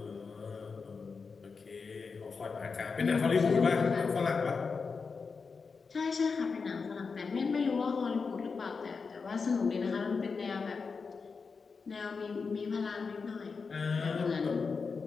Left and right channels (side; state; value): right; quieter; 5.0 dB